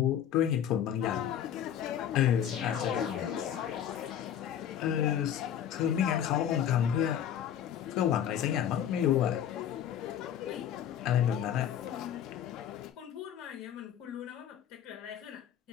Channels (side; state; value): right; quieter; 9.7 dB